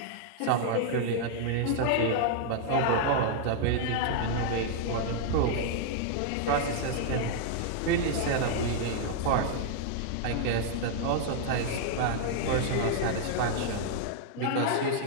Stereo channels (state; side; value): different; both; correlation -0.01